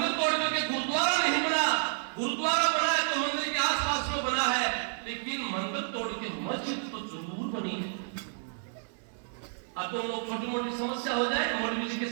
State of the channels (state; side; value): silent; left; digital silence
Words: तोड़ करके गुरुद्वारा नहीं बना। गुरुद्वारा बना है तो मंदिर के आसपास में बना है, लेकिन मंदिर तोड़ के मस्जिद तो जरूर बनी है। अब तो लोग छोटी मोटी समस्या हो जाए मौलवी जी के